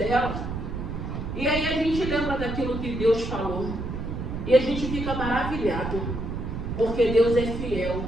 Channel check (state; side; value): noise; right; rumble, 5 dB below the sound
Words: e aí a gente lembra daquilo que Deus falou. E a gente fica maravilhado, porque Deus é fiel.